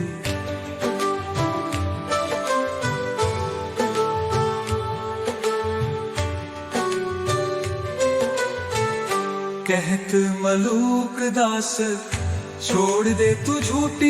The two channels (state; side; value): identical; both; correlation 1.00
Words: कहत मलूक दास छोड़ दे तू